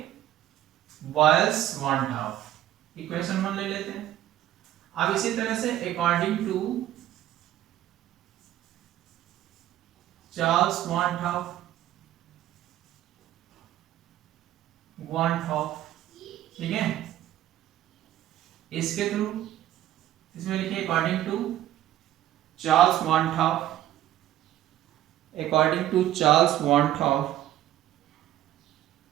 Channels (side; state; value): left; quieter; 13.2 dB